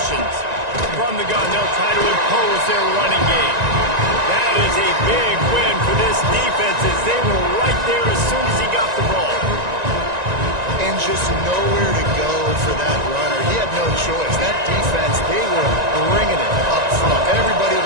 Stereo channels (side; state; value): left; late; 1.9 ms